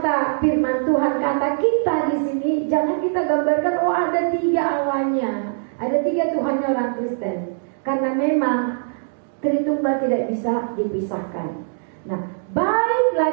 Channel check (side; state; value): left; silent; digital silence